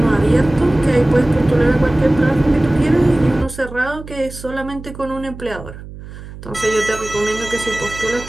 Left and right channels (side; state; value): right; noise; hum, 14 dB below the sound